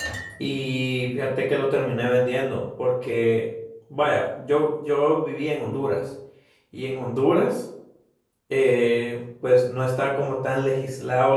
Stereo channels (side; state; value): both; identical; correlation 1.00